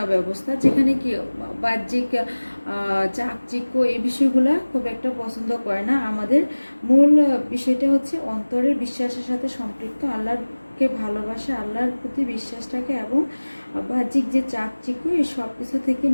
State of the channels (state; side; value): inverted; both; correlation -1.00